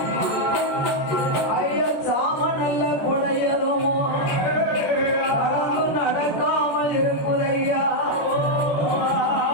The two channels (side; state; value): right; late; 14 ms